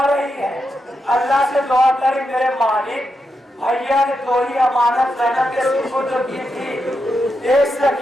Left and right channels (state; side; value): normal; both; correlation 0.85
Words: رہی ہے. اللہ سے دعا کری میرے مالک, بھیا نے تھوڑی امانت زینب کے سپرد کی تھی. ایک